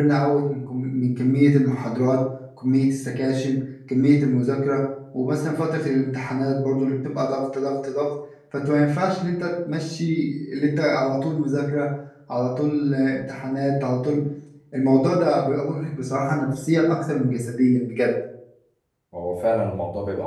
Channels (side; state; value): both; identical; correlation 1.00